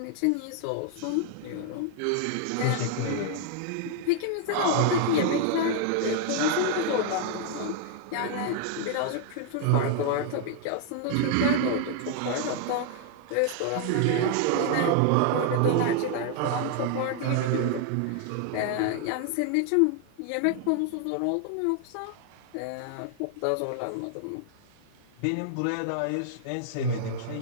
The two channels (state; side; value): different; both; correlation 0.00